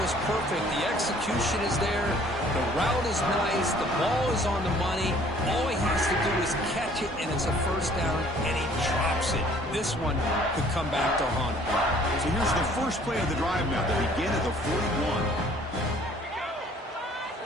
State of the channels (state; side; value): normal; both; correlation 0.56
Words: perfect. The execution is there. The route is nice. The ball is on the money. All he has to do is catch it, and it's a first down, and he drops it. This one could come back to haunt him. So here's the first play of the drive now. They begin at the 41.